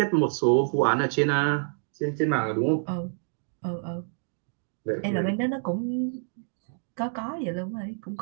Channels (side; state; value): left; silent; digital silence